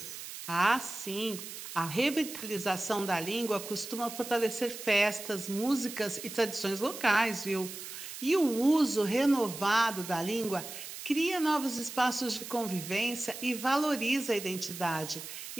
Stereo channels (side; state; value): right; noise; hiss, 10 dB below the sound